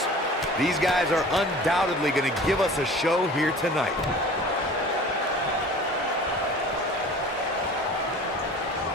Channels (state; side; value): normal; both; correlation 0.43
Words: These guys are undoubtedly going to give us a show here tonight.